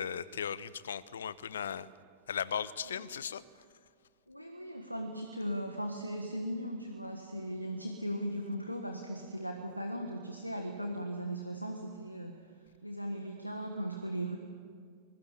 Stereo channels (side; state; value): both; inverted; correlation -0.76